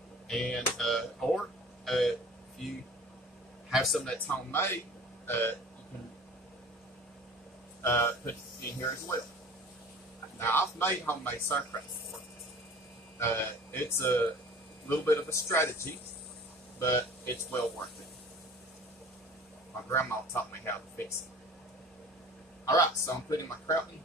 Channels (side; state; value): both; normal; correlation 0.44